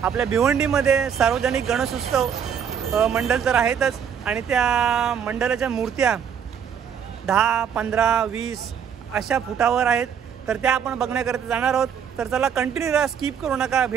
आपल्या भिवंडीमध्ये सार्वजनिक गणेशोत्सव मंडळ तर आहेतच आणि त्या मंडळाच्या मूर्त्या 10, 15, 20 अशा फुटावर आहेत. तर त्या आपण बघण्याकरता जाणार आहोत. तर चला कंटिन्यू राहा, स्किप करू नका,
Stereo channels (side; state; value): left; quieter; 7.8 dB